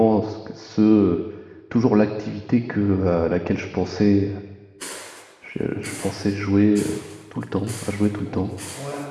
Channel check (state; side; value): identical; both; correlation 1.00